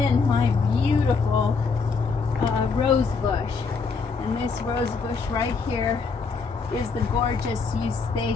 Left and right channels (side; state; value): right; quieter; 4.8 dB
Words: my beautiful rose bush. And this rose bush right here is the gorgeous